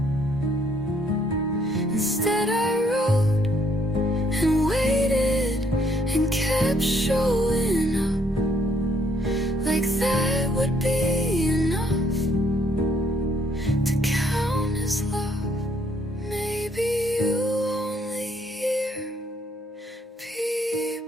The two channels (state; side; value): normal; both; correlation 0.68